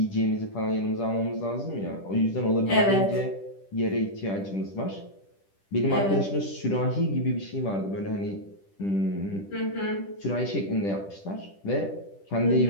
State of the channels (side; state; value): right; late; 10 ms